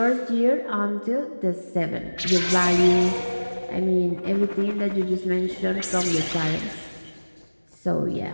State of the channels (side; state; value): both; inverted; correlation -1.00